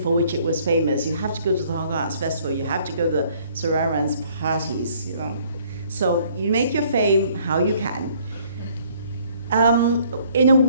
which it was famous. You have to go to the Hong Kong Arts Festival, you have to go to the Sir Aaron's parties, So you make your fame how you can. In a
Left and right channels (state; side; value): inverted; both; correlation -0.61